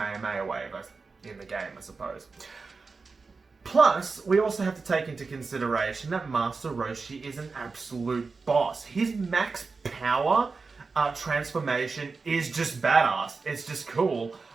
Wave in the game, I suppose. Plus, we also have to take into consideration that Master Roshi is an absolute boss. His max power transformation is just badass. It's just cool.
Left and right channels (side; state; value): left; quieter; 4.4 dB